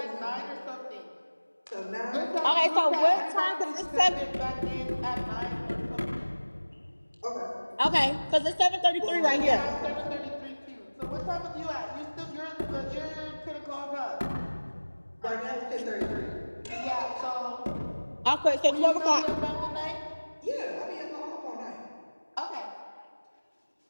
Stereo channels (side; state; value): both; inverted; correlation -1.00